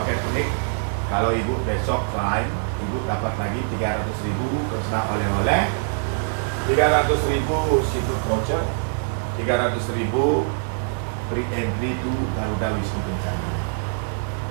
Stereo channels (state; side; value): silent; left; digital silence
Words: unik. Kalau Ibu besok lain, Ibu dapat lagi 300.000 personal oleh-oleh, 300.000 seafood voucher, 300.000 free entry to Garuda Wisnu Kencana.